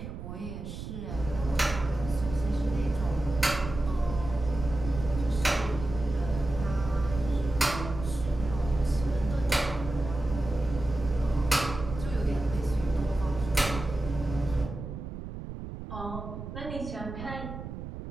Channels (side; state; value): right; noise; rumble, 8 dB below the sound